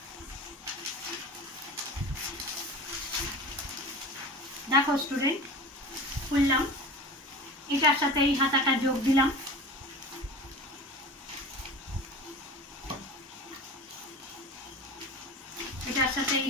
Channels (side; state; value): both; normal; correlation 0.35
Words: দেখো স্টুডেন্ট, খুললাম, এটার সাথে এই হাতাটা যোগ দিলাম, এটার সাথে এই